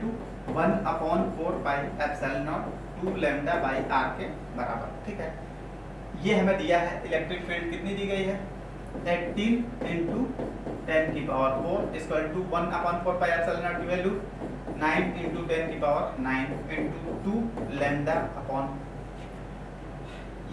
1/4 pi epsilon nought 2 lambda by r के बराबर, ठीक है। ये हमें दिया है इलेक्ट्रिक फील्ड कितनी दी गई है 18 इंटू 10 की power 4 equal to 1/4 pi epsilon naught की वैल्यू 9 इंटू 10 की पावर 9 इंटू 2 लैम्डा अपॉन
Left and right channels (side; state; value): both; identical; correlation 1.00